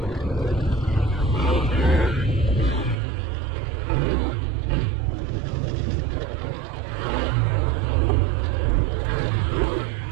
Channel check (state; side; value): drops out; left; at 3.0 s